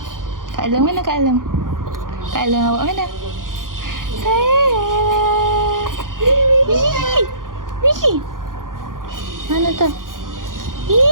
Kak Long mana Kak Long? Kak Long awak mana? Sayang. Wih. Mana tu?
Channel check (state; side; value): late; left; 0.90 ms